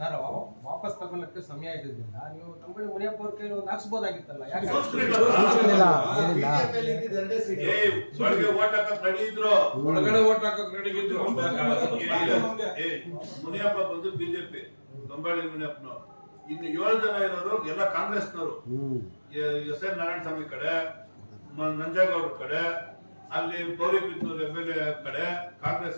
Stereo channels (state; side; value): inverted; both; correlation -1.00